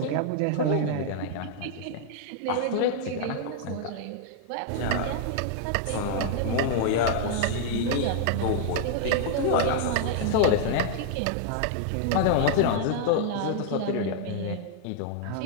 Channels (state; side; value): different; both; correlation -0.01